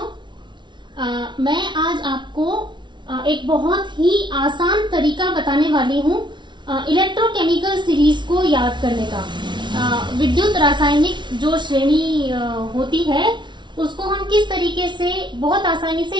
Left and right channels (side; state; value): left; late; 0.23 ms